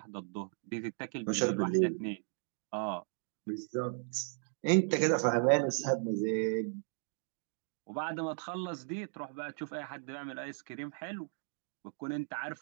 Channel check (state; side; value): silent; left; 54 dB below the other